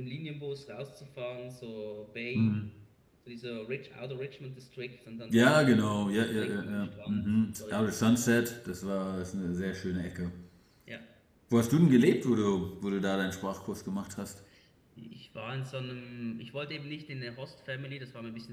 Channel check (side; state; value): both; identical; correlation 1.00